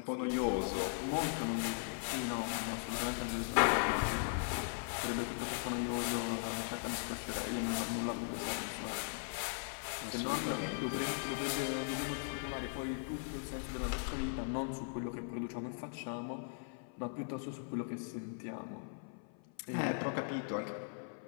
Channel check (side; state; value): right; silent; 52 dB below the other